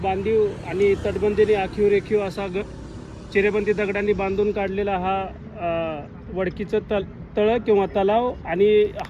आणि तटबंदीने आखीव रेखीव असा चिरेबंदी दगडांनी बांधून काढलेला हा वडकीचं तळं किंवा तलाव। आणि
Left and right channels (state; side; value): identical; both; correlation 1.00